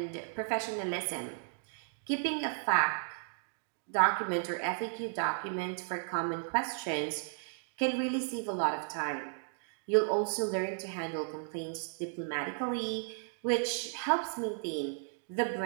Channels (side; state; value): left; silent; digital silence